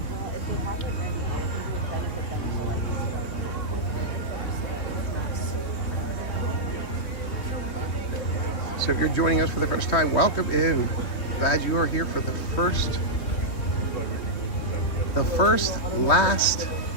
So if you're joining us for the first time, welcome in. Glad you are here for the first last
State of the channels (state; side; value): late; right; 3.4 ms